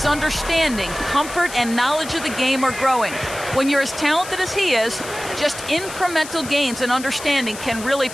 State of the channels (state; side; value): noise; left; hiss, 12 dB below the sound